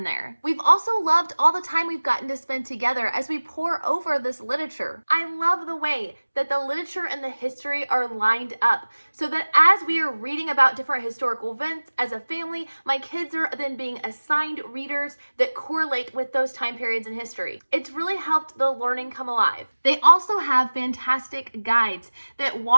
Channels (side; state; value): both; inverted; correlation -1.00